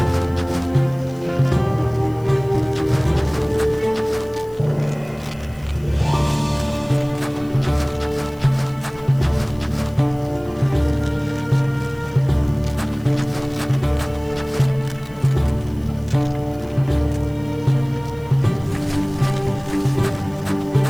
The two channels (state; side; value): noise; left; hiss, 28 dB below the sound